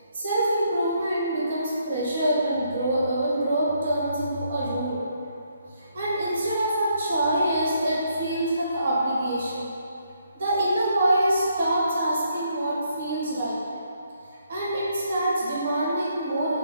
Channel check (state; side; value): inverted; both; correlation -0.73